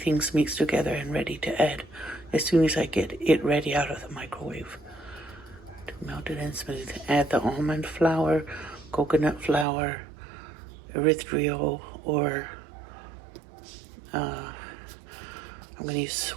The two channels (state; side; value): drops out; left; at 9.7 s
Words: mixed together and ready to add as soon as I get it ready out of the microwave. To melt it and smooth, add the almond flour, coconut flour, erythritol, or I'm going to use